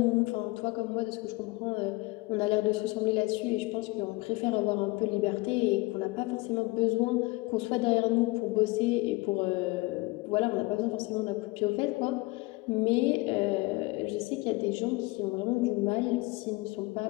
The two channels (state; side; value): quieter; right; 23.5 dB